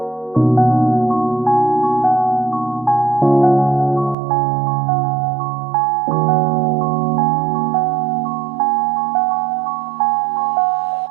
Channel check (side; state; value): left; drops out; at 4.2 s